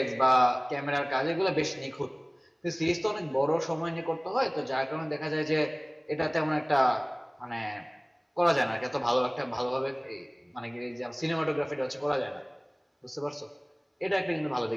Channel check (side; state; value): both; identical; correlation 1.00